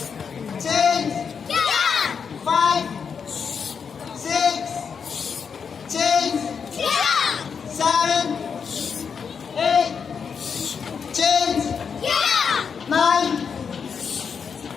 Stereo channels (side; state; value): right; quieter; 6.3 dB